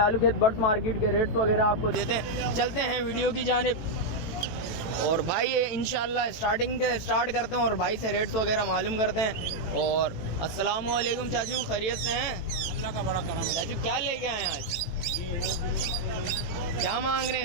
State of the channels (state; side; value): late; right; 18 ms